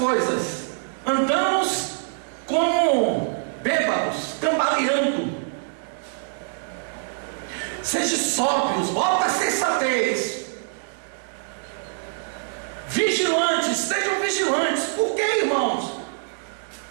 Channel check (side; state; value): left; silent; digital silence